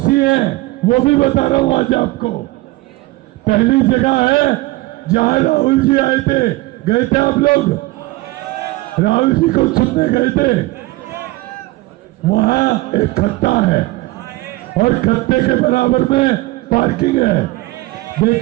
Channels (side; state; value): left; quieter; 19.9 dB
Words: है वो भी बता रहा हूं आज आपको। पहली जगह है जहां राहुल जी आए थे, गए थे आप लोग, राहुल जी को चुनने गए थे। वहां एक खत्ता है और खत्ते के बराबर में पार्किंग है।